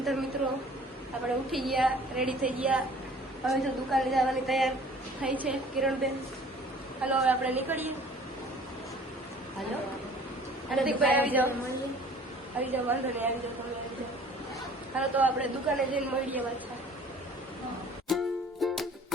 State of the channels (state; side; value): normal; both; correlation 0.50